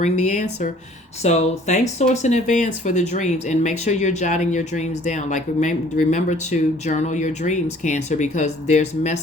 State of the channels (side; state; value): both; normal; correlation 0.55